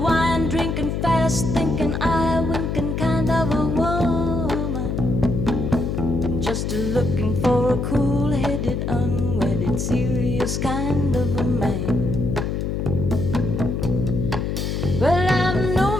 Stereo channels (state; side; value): noise; left; hum, 1 dB below the sound